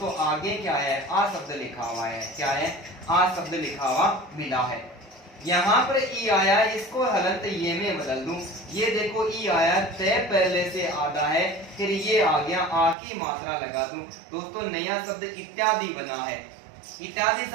आगे क्या है, आ शब्द लिखा हुआ है, क्या है, आ शब्द लिखा हुआ मिला है। यहाँ पर ई आया, इसको हलंत ये में बदल दूं। ये देखो ई आया, तय पहले से आधा है, फिर ये आ गया, आ की मात्रा लगा दूं। दोस्तों नया शब्द इत्यादि बना है। इत्यादि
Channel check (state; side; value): drops out; left; at 13.0 s